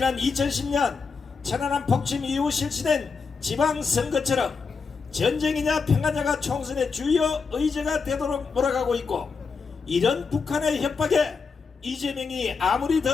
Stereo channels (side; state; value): right; quieter; 5.0 dB